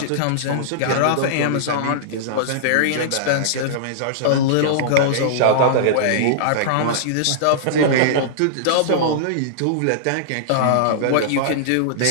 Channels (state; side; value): different; both; correlation -0.02